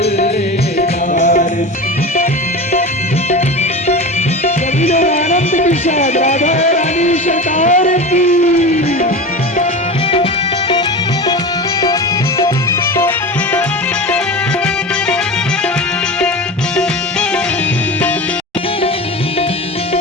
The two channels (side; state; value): both; normal; correlation 0.28